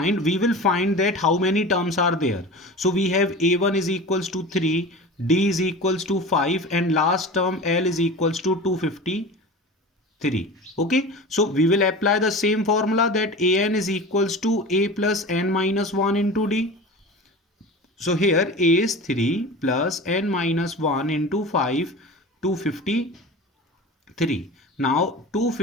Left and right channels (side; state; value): both; normal; correlation 0.33